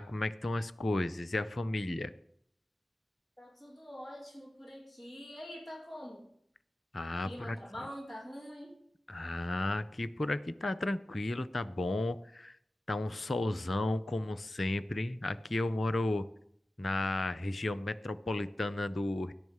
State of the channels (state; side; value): normal; both; correlation 0.95